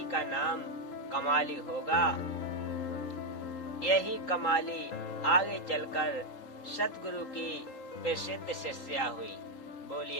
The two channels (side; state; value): right; late; 3.8 ms